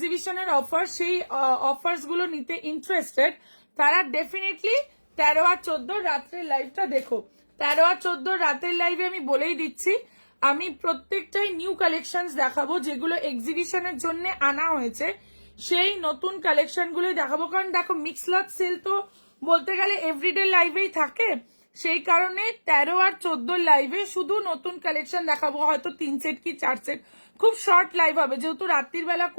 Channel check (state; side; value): inverted; both; correlation -1.00